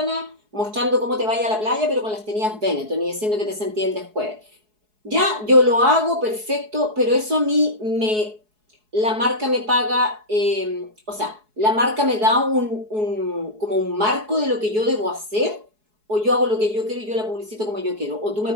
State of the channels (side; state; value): left; late; 4.7 ms